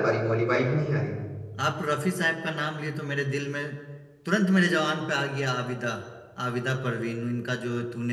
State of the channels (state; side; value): identical; both; correlation 1.00